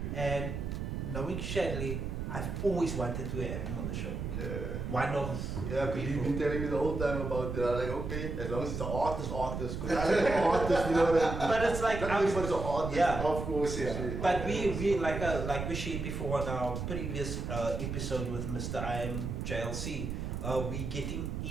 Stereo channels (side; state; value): right; noise; rumble, 4 dB below the sound